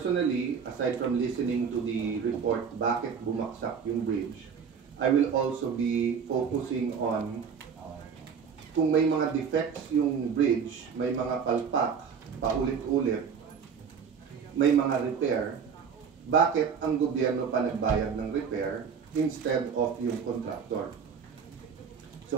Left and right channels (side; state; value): left; quieter; 6.6 dB